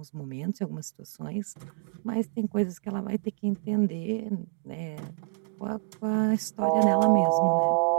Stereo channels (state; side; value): silent; left; digital silence